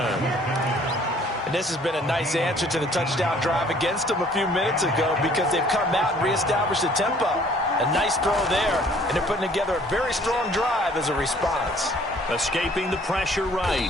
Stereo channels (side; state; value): both; normal; correlation 0.57